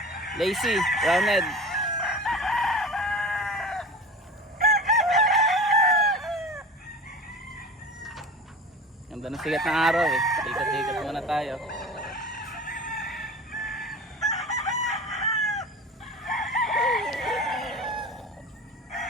lazy, roundhead. Ganda ng sigat ng araw eh. Ikat-ikat muna tayo.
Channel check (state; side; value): normal; both; correlation 0.36